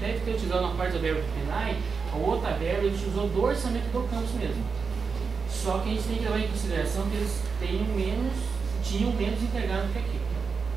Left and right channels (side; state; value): left; quieter; 5.3 dB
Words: ter utilizado uma parte da verba do PNAE, a outra verba ele utilizou do orçamento do campus mesmo. Só que a gente tem que levar em consideração que eles tinham menos integrado que aqui.